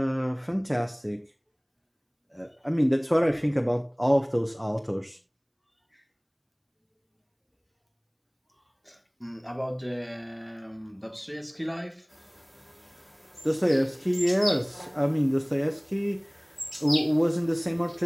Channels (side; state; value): both; identical; correlation 1.00